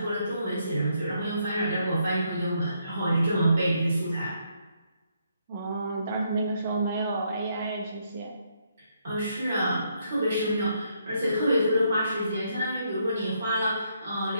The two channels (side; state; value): both; inverted; correlation -0.75